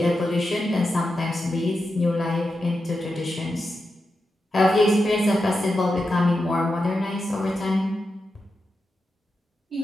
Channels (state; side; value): normal; both; correlation 0.89